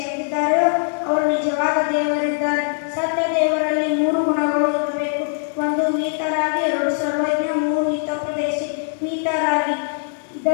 ಅವರು ನಿಜವಾದ ದೇವರಿದ್ದಾರೆ. ಸತ್ಯ ದೇವರಲ್ಲಿ ಮೂರು ಗುಣಗಳು ಇರಬೇಕು. ಒಂದು ಮೀತರಾಗಿ, ಎರಡು ಸರ್ವಜ್ಞ, ಮೂರು ಹಿತೋಪದೇಶಿ. ಮೀತರಾಗಿ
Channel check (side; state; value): right; silent; digital silence